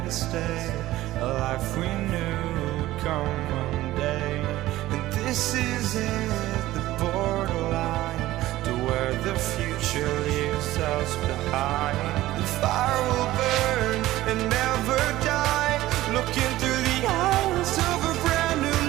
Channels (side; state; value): left; quieter; 16.0 dB